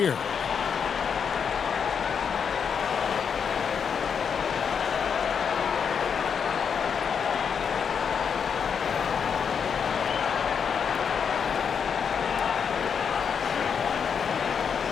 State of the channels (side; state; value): right; quieter; 6.8 dB